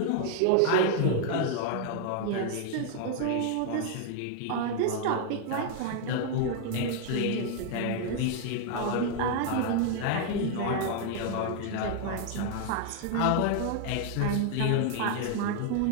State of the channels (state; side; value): different; both; correlation 0.00